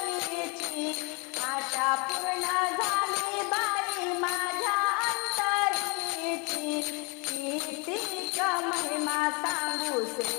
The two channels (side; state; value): right; quieter; 30.9 dB